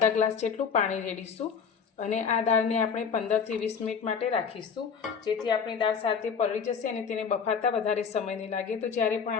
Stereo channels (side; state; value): right; quieter; 6.4 dB